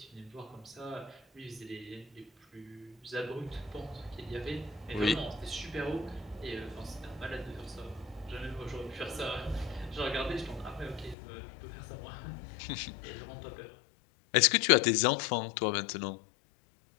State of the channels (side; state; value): right; drops out; at 11.2 s